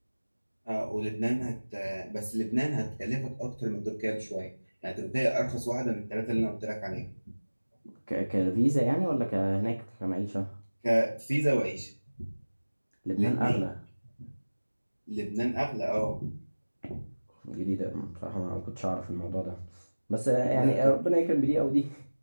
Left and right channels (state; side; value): inverted; both; correlation -1.00